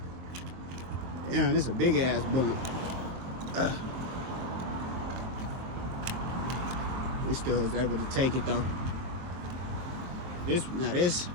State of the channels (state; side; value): late; left; 23 ms